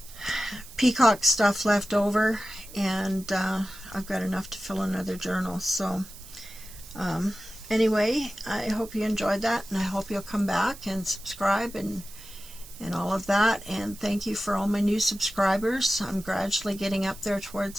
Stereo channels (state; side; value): noise; right; hiss, 17 dB below the sound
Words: Peacock stuff left over, and I've got enough to fill another journal. So anyway, I hope you enjoyed that, and I hope you'll come back and subscribe and all of that. And thank you for all my new subscribers. I'm gradually getting up there